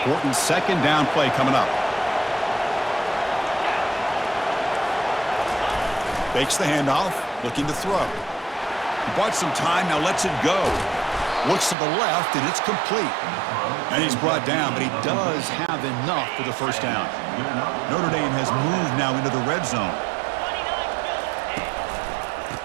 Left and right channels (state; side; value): drops out; left; at 11.8 s